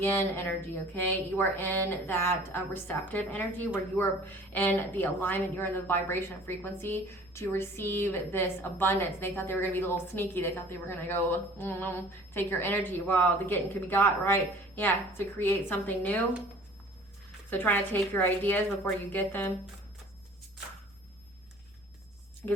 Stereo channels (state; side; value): noise; right; rumble, 30 dB below the sound